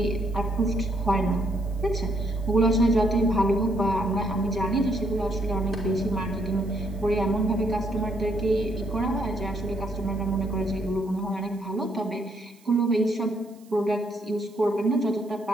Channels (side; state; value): right; noise; hiss, 29 dB below the sound